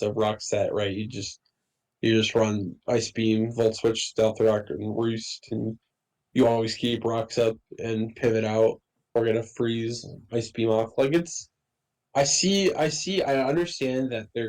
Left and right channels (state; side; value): identical; both; correlation 1.00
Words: rock set, right? You just run Ice Beam, Volt Switch, Stealth Rock, and Roost, and you always keep rocks up and pivot out or gonna freeze Ice Beam off. Like I understand that